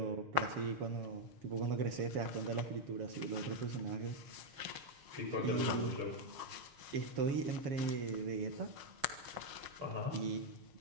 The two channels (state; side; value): late; left; 6.3 ms